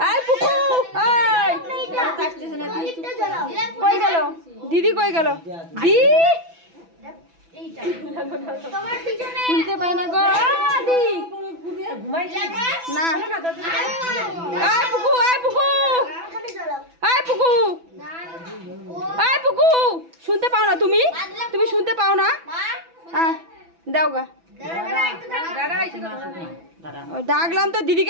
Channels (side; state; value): left; late; 6.0 ms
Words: এই পুকু এই কই গেল দিদি কই গেল দি শুনতে পাই না গো দি না এই পুকু এই পুকু এই পুকু এই পুকু শুনতে পাও না তুমি তুমি শুনতে পাও না হ্যাঁ দাও গা ডাকলাম তো